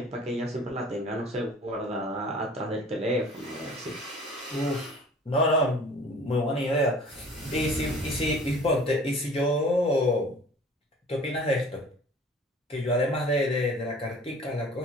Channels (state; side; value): normal; both; correlation 0.46